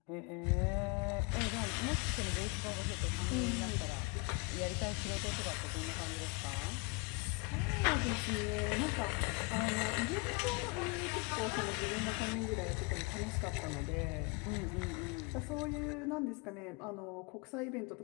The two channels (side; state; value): right; quieter; 28.3 dB